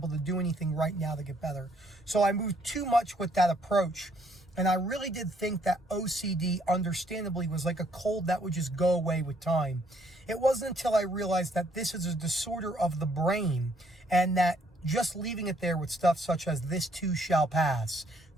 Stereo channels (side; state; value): both; normal; correlation 0.68